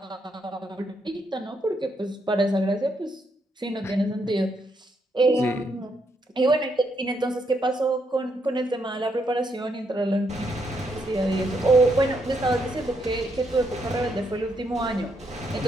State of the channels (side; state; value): both; normal; correlation 0.77